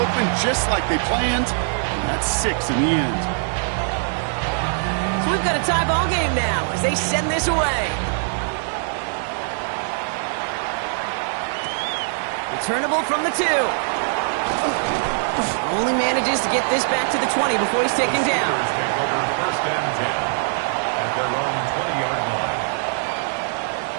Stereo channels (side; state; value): left; silent; 64 dB below the other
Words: just like they planned, and that's 6 in the end. So we've got a tie ball game now as they send this away. Returnable from the 2. Only manages to get this back to the 20 before he's taken down. 1st and 10 at their own 20-yard line.